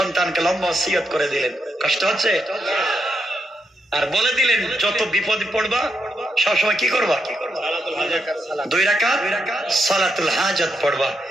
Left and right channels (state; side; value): normal; both; correlation 0.81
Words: লম্বা ওসিয়ত করে দিলেন, কষ্ট হচ্ছে, আর বলে দিলেন যত বিপদ পড়বা সবসময় কি করবা, 2 রাকাত সালাতুল হাজত পড়বা,